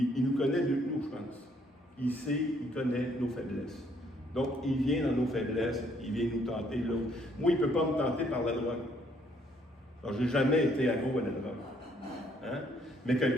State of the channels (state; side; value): normal; both; correlation 0.67